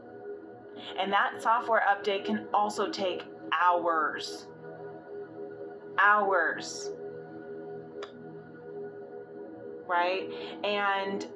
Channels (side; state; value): both; identical; correlation 1.00